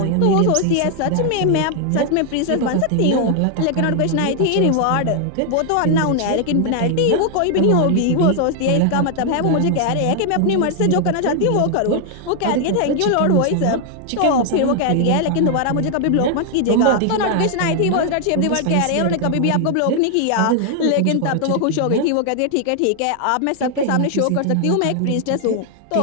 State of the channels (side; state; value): both; different; correlation 0.00